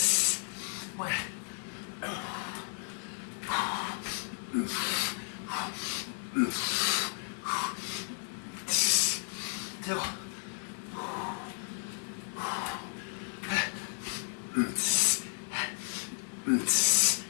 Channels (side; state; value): right; silent; 56 dB below the other